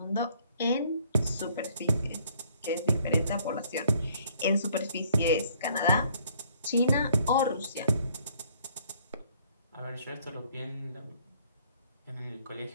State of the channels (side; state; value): both; inverted; correlation -0.62